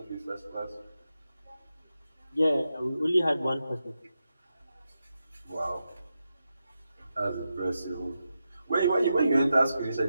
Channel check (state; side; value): inverted; both; correlation -0.88